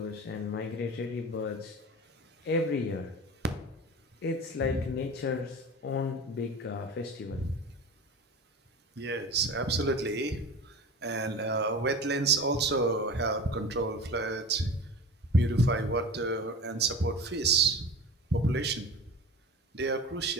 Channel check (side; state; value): both; normal; correlation 0.33